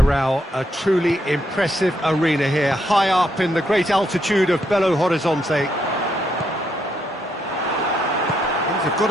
a truly impressive arena here, high up in the great altitude of Belo Horizonte. Things have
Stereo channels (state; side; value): normal; both; correlation 0.77